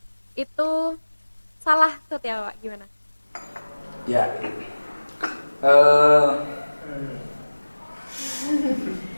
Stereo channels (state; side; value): inverted; both; correlation -1.00